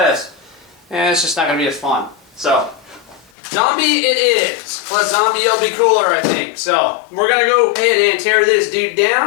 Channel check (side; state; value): right; drops out; at 3.3 s